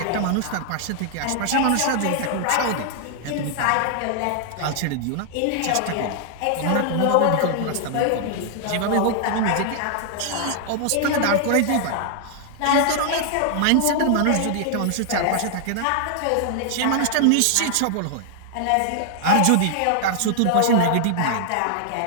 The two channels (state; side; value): different; both; correlation 0.00